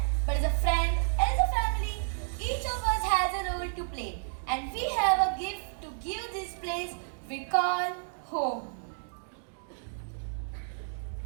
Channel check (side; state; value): left; silent; digital silence